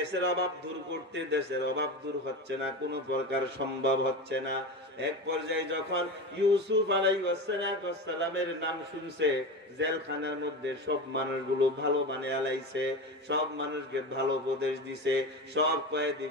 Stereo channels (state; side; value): normal; both; correlation 0.25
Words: অভাব দূর করতে, দেশের অভাব দূর হচ্ছে না, কোনো প্রকার সম্ভব হচ্ছে না। এক পর্যায়ে যখন ইউসুফ আলাইহিস সালামের নাম শুনছে, জেলখানার মধ্যে সব মানুষগুলো ভালো বানিয়ে আলাইছে, সব মানুষকে ভালো উপদেশ দিছে, সব